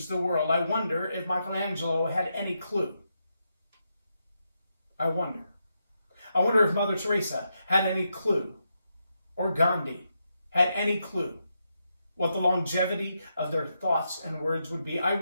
the world. I wonder if Michelangelo had any clue. I wonder. I wonder if Mother Teresa had any clue, or Gandhi had any clue what the longevity of their thoughts and words would be. I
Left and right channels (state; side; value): inverted; both; correlation -0.83